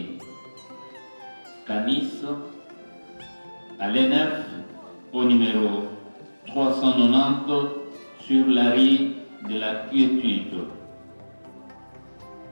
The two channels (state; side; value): inverted; both; correlation -1.00